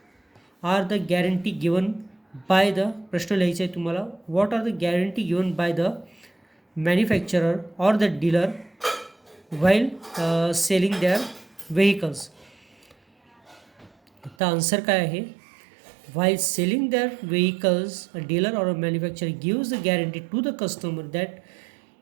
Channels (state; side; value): drops out; left; at 14.4 s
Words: are the guarantee given by the, प्रश्न लिहायचा आहे तुम्हाला, what are the guarantee given by the manufacturer or the dealer while selling their vehicles. तर आन्सर काय आहे, while selling their vehicles a dealer or a manufacturer gives a guarantee to the customer that